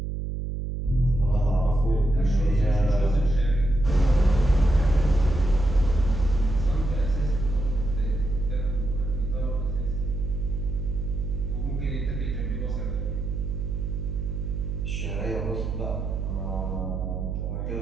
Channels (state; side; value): noise; right; hum, 3 dB below the sound